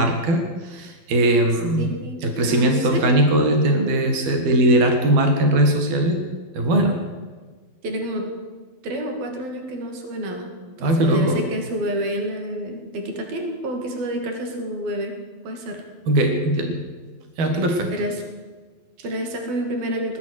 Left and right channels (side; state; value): left; late; 12 ms